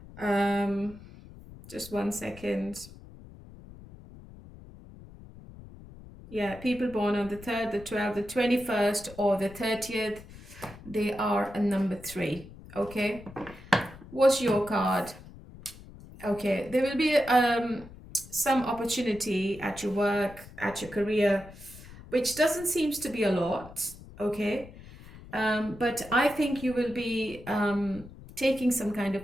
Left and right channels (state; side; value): noise; left; rumble, 18 dB below the sound